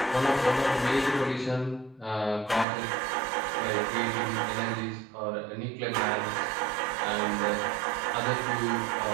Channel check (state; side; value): drops out; left; at 2.7 s